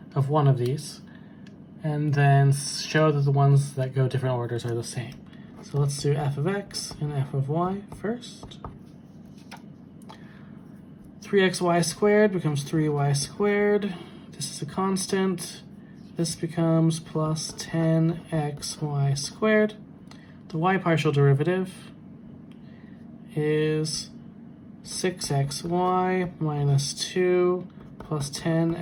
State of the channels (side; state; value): both; identical; correlation 1.00